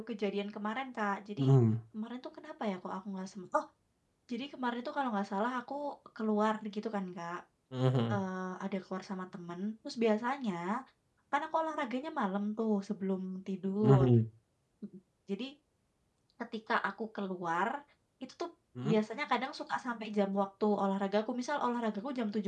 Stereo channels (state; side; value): identical; both; correlation 1.00